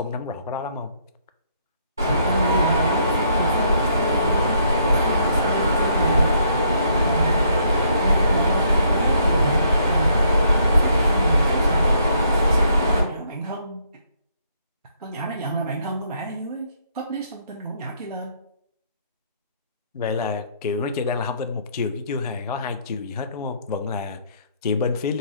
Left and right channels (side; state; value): both; inverted; correlation -0.69